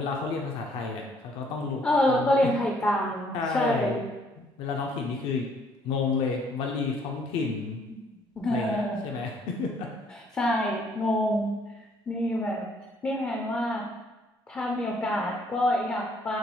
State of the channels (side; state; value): both; normal; correlation 0.64